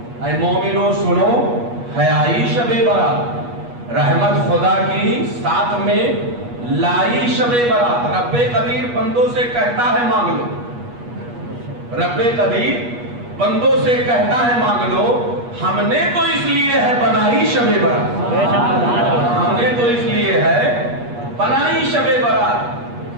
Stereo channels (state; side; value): late; left; 8.3 ms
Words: اے مومنو سنو ہے آئی شب برات، رحمت خدا کی ساتھ میں لائی شب برات۔ رب قدیر بندوں سے کہتا ہے مانگ لو، رب قدیر بندوں سے کہتا ہے مانگ لو، ہم نے تو اس لیے ہے بنائی شب برات، ہم نے تو اس لیے ہے بنائی شب برات۔